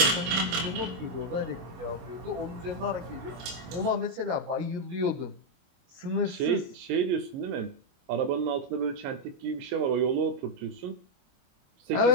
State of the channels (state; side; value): late; left; 22 ms